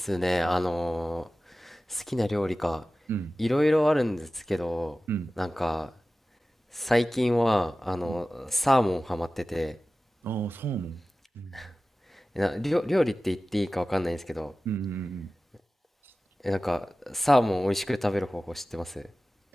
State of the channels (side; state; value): both; normal; correlation 0.96